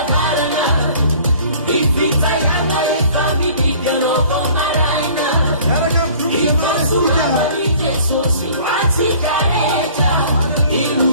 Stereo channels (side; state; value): both; inverted; correlation -0.51